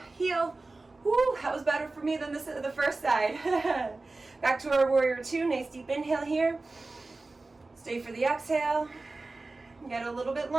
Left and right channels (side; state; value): left; quieter; 3.3 dB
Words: Woo, that was better for me than the first side. Back to our warrior two, nice deep inhale here. Stay for the exhale. Get a little bit